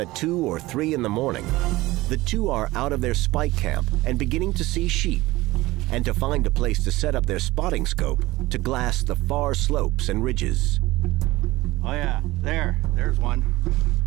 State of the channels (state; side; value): quieter; left; 18.9 dB